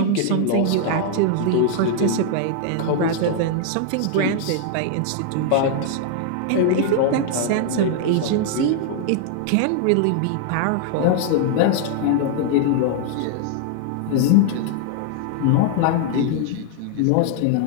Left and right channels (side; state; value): both; different; correlation 0.00